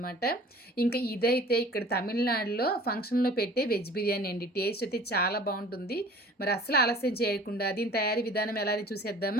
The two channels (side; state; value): both; normal; correlation 0.46